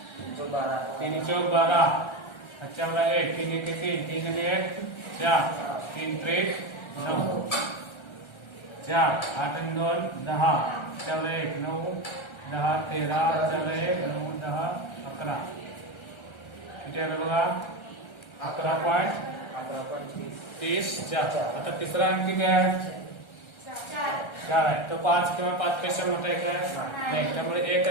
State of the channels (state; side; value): late; right; 1.3 ms